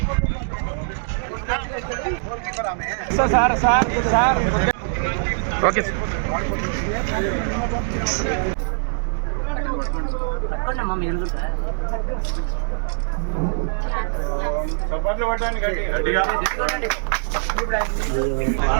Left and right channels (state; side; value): silent; left; digital silence